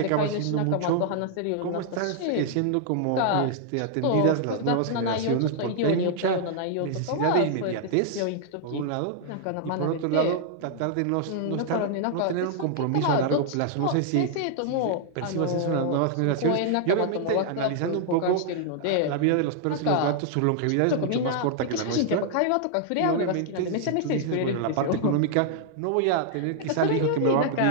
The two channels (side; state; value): both; different; correlation -0.01